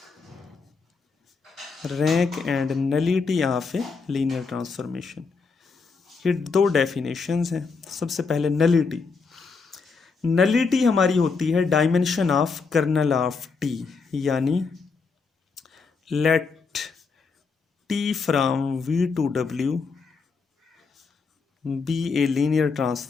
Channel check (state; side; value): quieter; right; 4.8 dB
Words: Rank and nullity of A linear transformation, ये दो डेफिनेशंस हैं। सबसे पहले नलिटी। नलिटी हमारी होती है dimension of kernel of T, यानी let T from V to W be a linear